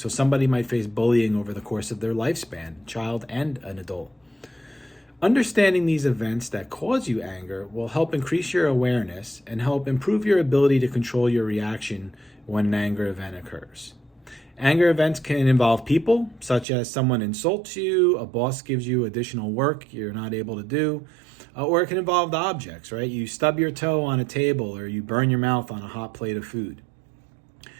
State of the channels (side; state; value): left; drops out; at 16.7 s